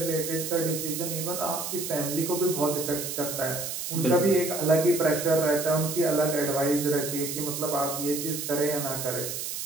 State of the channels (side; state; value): right; noise; hiss, 5 dB below the sound